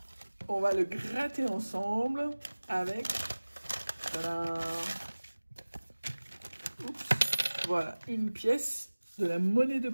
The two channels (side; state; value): both; inverted; correlation -1.00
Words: on va le gratter ensemble avec... Oups, voilà, une pièce de la monnaie de